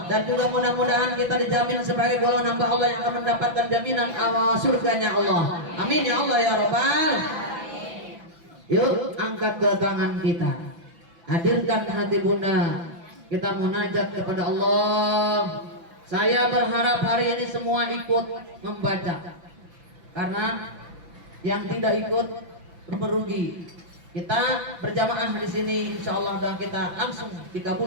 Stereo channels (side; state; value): left; late; 5.9 ms